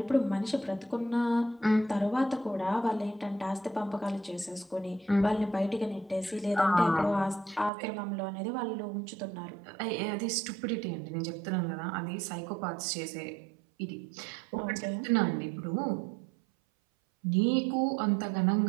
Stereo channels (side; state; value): left; drops out; at 7.7 s